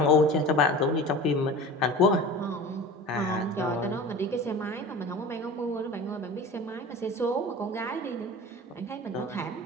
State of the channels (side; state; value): both; normal; correlation 0.35